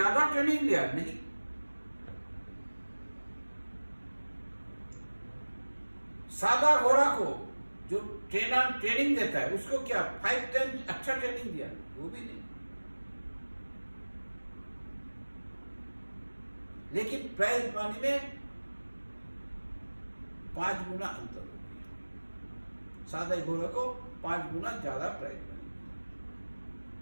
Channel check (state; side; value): inverted; both; correlation -1.00